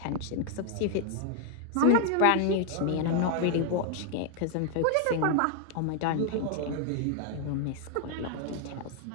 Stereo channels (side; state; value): both; different; correlation 0.00